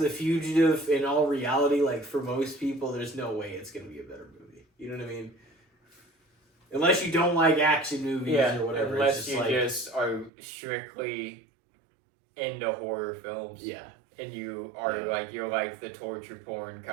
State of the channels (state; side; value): drops out; left; at 10.3 s